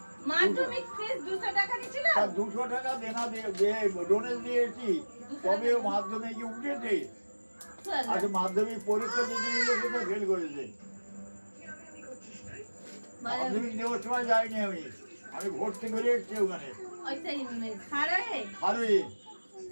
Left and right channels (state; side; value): inverted; both; correlation -1.00